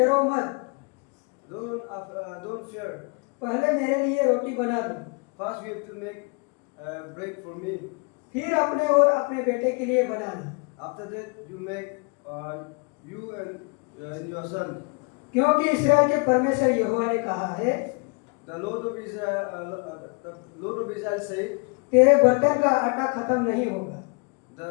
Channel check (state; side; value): quieter; right; 32.8 dB